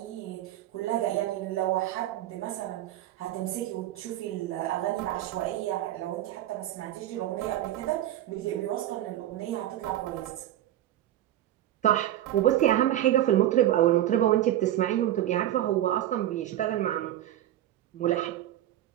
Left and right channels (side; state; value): left; quieter; 13.1 dB